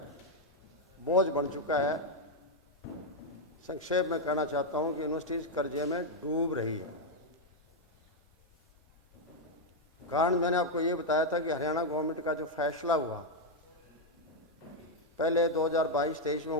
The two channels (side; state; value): both; normal; correlation 0.01